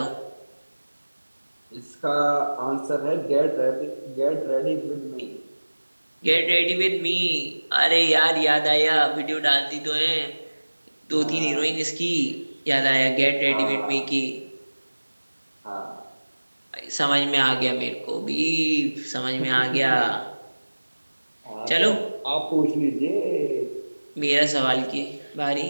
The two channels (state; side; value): inverted; both; correlation -1.00